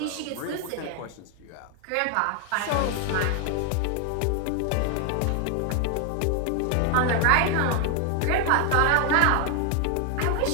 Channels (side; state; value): both; different; correlation 0.00